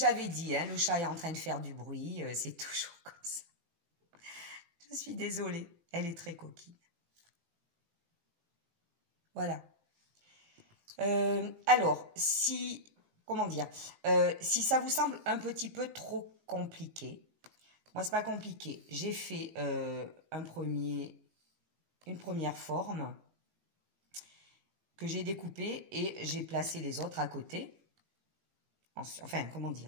dit, hein, le chat est en train de faire du bruit, c'est toujours comme ça. Je suis désolée, elle est très coquine. Voilà. Alors, si ça vous semble un petit peu trop compliqué, moi c'est pas compliqué. J'ai fait une première forme que j'ai découpée et j'ai placé les autres à côté. Enfin, comment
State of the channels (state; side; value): late; left; 18 ms